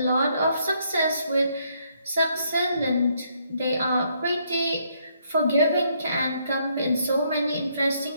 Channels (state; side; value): inverted; both; correlation -0.72